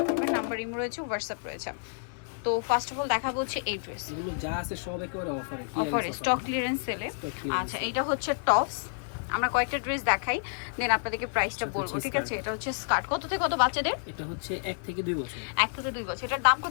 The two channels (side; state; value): right; silent; 58 dB below the other